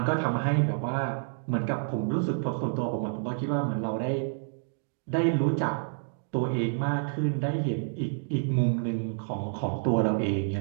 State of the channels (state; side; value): silent; left; digital silence